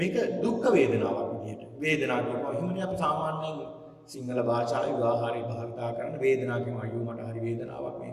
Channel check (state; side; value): identical; both; correlation 1.00